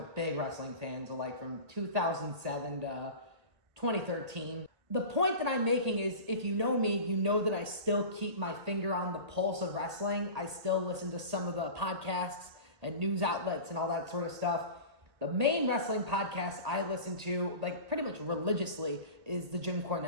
big wrestling fan, so like from 2007 to 2013. The point that I'm making is, if you know me, you know that I still keep my finger on the pulse of wrestling. I still listen to some of the podcasts and news outlets and all that sort of stuff. The main wrestling podcast I listen to, like pretty much religiously, is the Jim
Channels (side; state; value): left; late; 1.8 ms